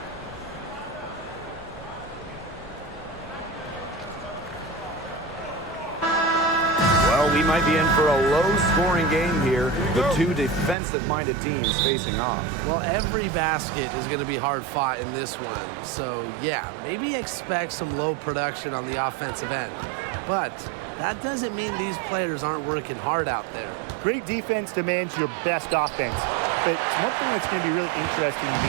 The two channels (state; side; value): drops out; left; at 10.8 s